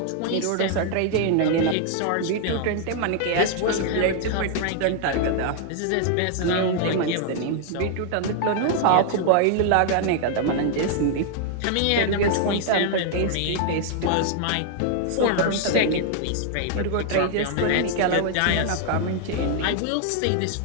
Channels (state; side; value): different; both; correlation 0.00